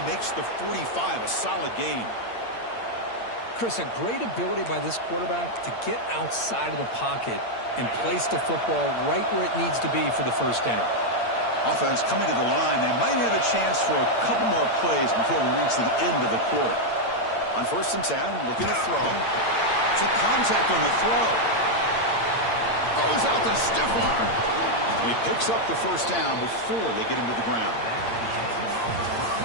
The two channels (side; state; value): right; late; 8.7 ms